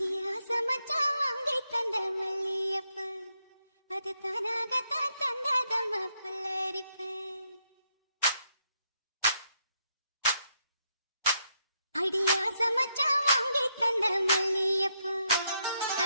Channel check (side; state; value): both; inverted; correlation -0.78